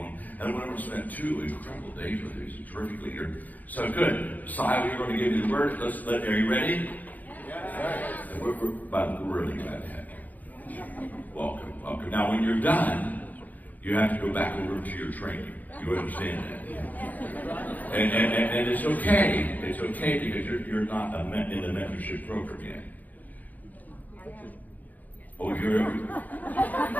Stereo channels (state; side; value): late; right; 0.081 ms